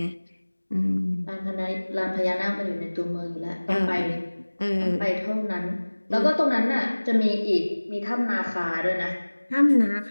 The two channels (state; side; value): inverted; both; correlation -1.00